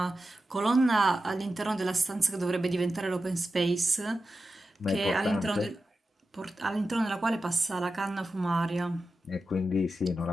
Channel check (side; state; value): both; normal; correlation 0.91